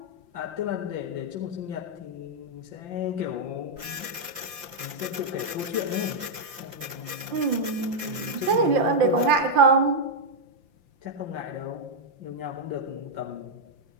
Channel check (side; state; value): left; late; 5.8 ms